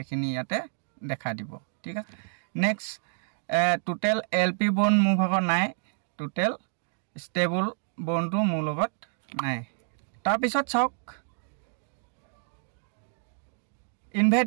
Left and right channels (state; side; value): silent; left; digital silence